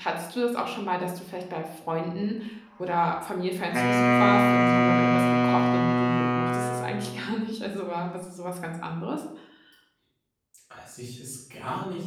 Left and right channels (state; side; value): identical; both; correlation 1.00